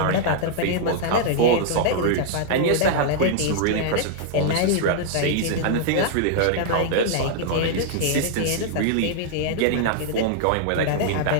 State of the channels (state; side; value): different; both; correlation -0.01